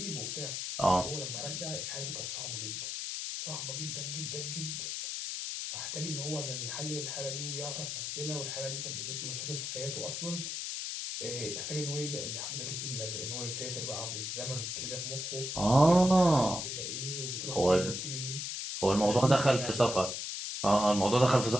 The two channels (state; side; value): noise; left; hiss, 4 dB below the sound